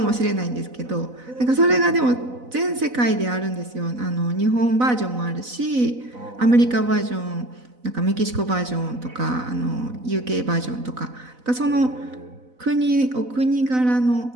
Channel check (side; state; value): left; late; 4.0 ms